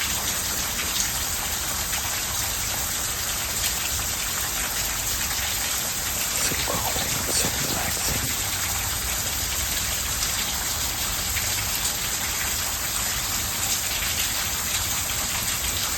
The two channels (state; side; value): identical; both; correlation 1.00